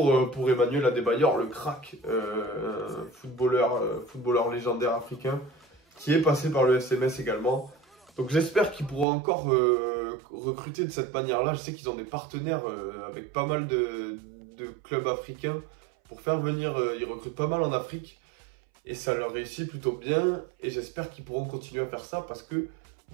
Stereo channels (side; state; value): left; drops out; at 9.1 s